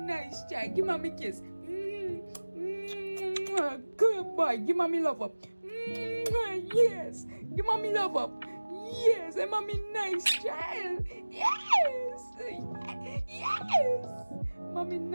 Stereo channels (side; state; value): both; inverted; correlation -1.00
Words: child. Give mommy a kiss. Good boy. Give mommy love up. Yes. Give mommy love up. Yes. And mommy nice child. Yes. Yes. Mommy